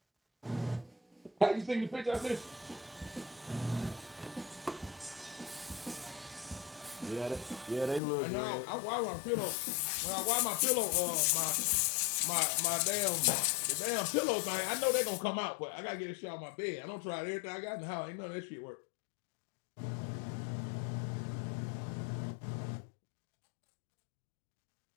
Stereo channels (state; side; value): drops out; right; at 8.0 s